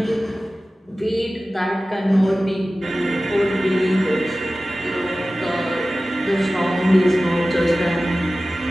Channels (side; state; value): both; normal; correlation 0.96